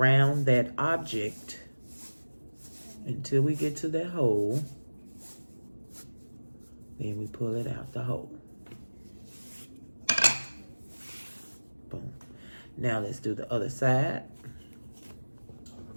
that object until we get to that hole. Then we pull it out the hole. Boom. Now let's do the other side.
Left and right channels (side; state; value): both; inverted; correlation -1.00